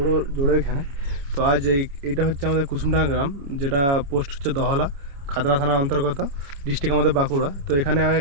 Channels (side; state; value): left; late; 29 ms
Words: জোড়ের এখানে। তো আজ এইটা হচ্ছে আমাদের কুসুমডাঙ্গা গ্রাম, যেটা পোস্ট হচ্ছে দহলা, খাতড়া থানার অন্তর্গত, ডিস্ট্রিক্ট আমাদের বাঁকুড়া। তো এখানে